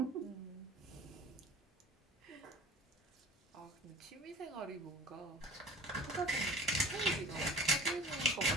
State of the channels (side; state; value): both; normal; correlation 0.42